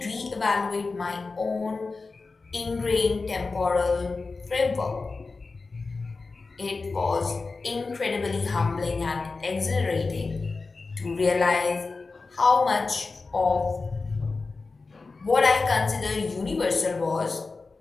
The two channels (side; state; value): right; quieter; 4.0 dB